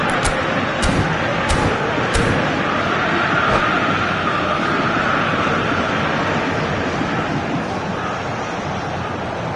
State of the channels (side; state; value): both; identical; correlation 1.00